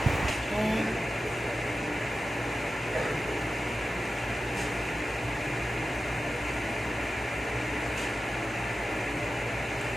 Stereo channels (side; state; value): both; normal; correlation 0.93